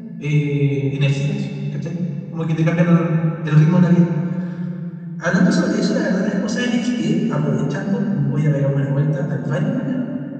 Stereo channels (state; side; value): identical; both; correlation 1.00